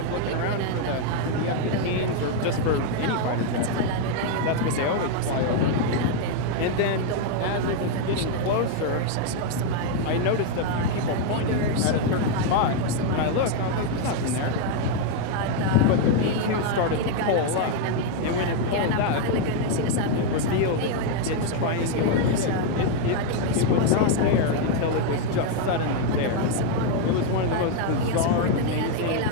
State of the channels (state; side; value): different; both; correlation 0.00